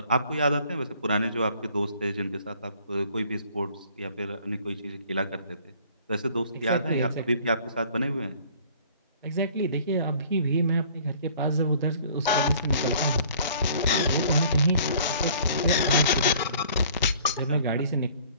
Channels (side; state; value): both; inverted; correlation -0.54